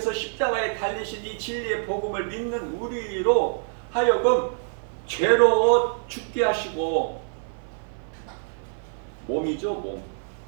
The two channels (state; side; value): silent; left; 56 dB below the other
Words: 십자가에 달리신 이 진리의 복음을 믿는 우리로 하여금 죄로 죽게 하시고, 몸이죠, 몸.